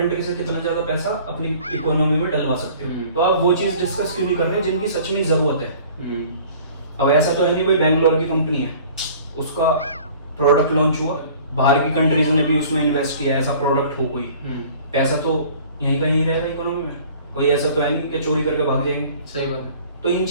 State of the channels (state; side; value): inverted; both; correlation -0.49